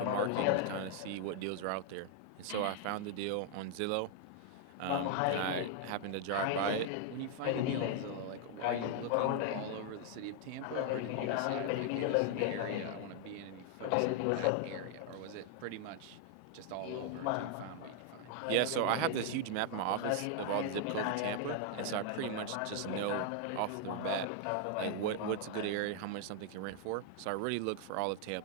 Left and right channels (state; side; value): different; both; correlation 0.00